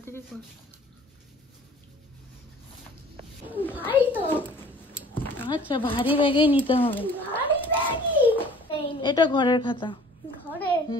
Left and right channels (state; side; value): normal; both; correlation 0.50